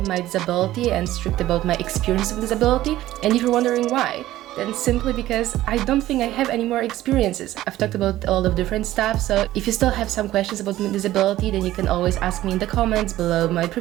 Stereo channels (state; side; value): quieter; left; 14.9 dB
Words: my disability and strict about my experience with disability. And if you're wondering why, then simply because I don't think I have any more experiences. I've talked about a lot of different stuff, so if you still have some questions about my disability, then you can always ask me in the comments below my